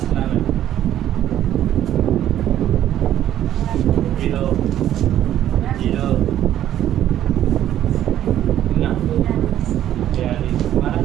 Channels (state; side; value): quieter; left; 11.7 dB